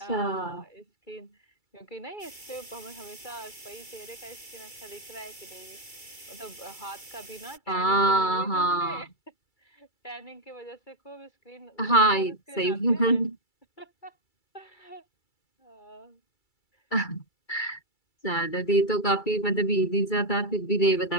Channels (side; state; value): right; late; 2.3 ms